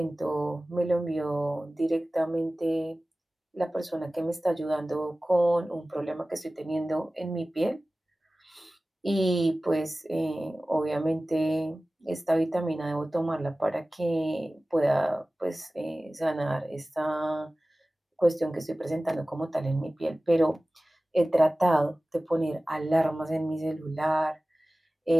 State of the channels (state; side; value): normal; both; correlation 0.97